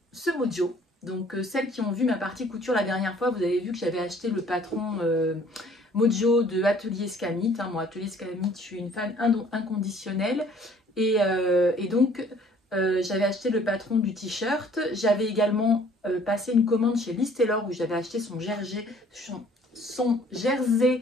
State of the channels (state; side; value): normal; both; correlation 0.56